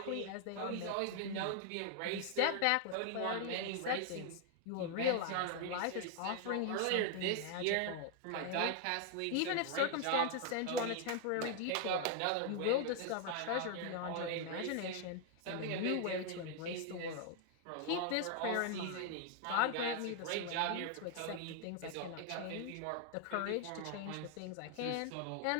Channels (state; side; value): different; both; correlation 0.00